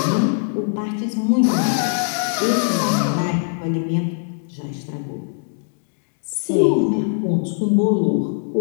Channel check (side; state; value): right; silent; digital silence